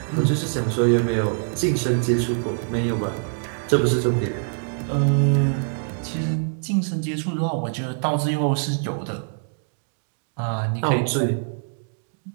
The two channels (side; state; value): left; silent; digital silence